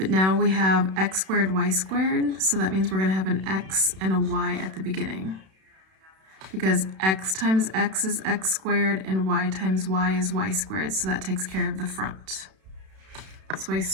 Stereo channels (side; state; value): left; late; 32 ms